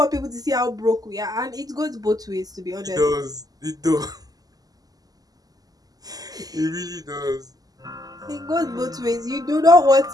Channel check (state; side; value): late; left; 0.18 ms